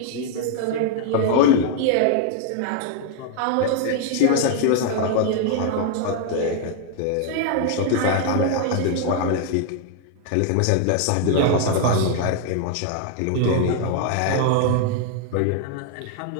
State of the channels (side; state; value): both; different; correlation 0.00